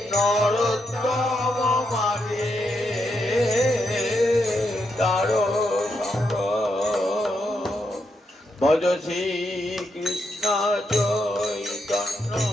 নরোত্তম মাগে দারো সঙ্গ ভজ শ্রী কৃষ্ণ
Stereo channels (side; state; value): both; normal; correlation 0.81